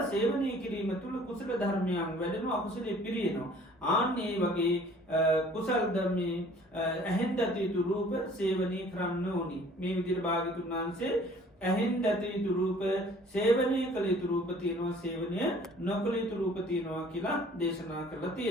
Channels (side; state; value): both; normal; correlation 0.53